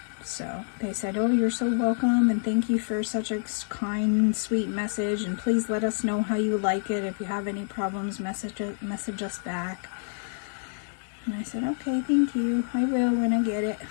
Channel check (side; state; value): right; silent; digital silence